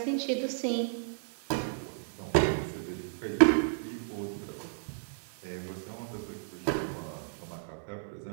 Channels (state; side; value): silent; left; digital silence